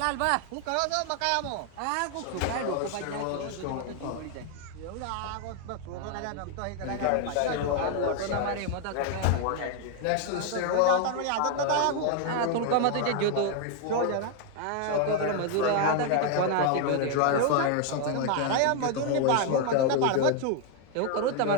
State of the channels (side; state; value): both; different; correlation 0.01